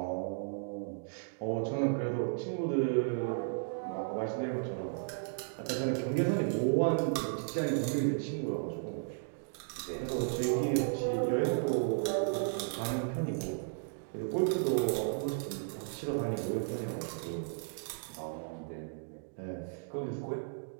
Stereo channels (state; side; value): silent; left; digital silence